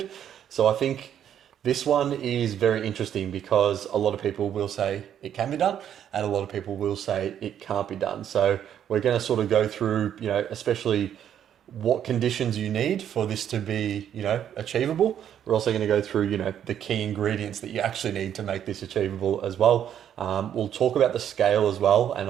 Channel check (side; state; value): left; quieter; 9.7 dB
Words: So I think this one is very interesting because a lot of people will say it can be done and a lot of people will say it can't be done. So we're going to sort of go through, especially what conditions you need for this to be, achievable. We're also going to go through, the key ingredients that you actually need to make this achievable as well. We'll talk about the scale as well, and